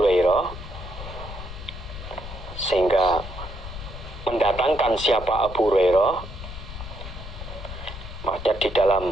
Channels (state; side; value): noise; left; rumble, 11 dB below the sound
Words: sehingga mendatangkan siapa Abu Hurairah. Maksudnya di